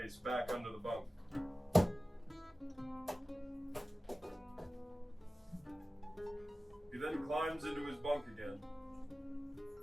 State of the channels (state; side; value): normal; both; correlation 0.96